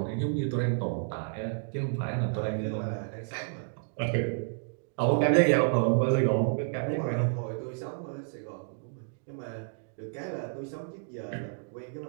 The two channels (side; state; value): left; silent; digital silence